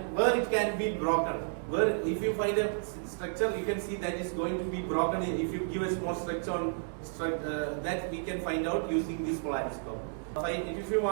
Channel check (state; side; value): silent; left; digital silence